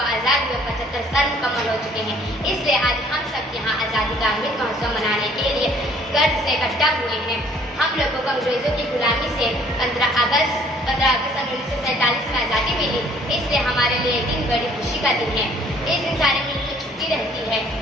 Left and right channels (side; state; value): both; normal; correlation 0.58